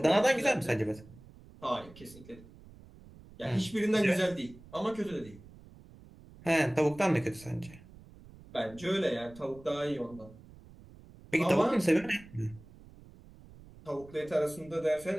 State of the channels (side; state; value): right; noise; rumble, 21 dB below the sound